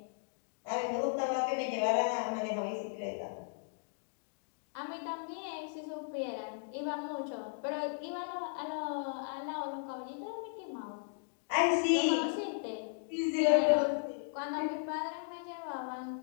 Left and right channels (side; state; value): right; silent; digital silence